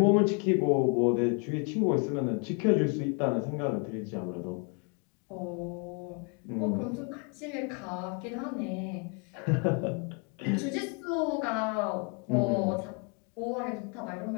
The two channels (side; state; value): right; quieter; 35.6 dB